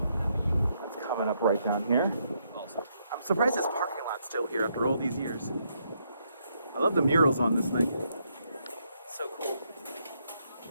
That's coming up right down here. I'm surprised this parking lot's still here after all these years. I love the murals on this thing. So cool.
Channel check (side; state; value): both; inverted; correlation -0.76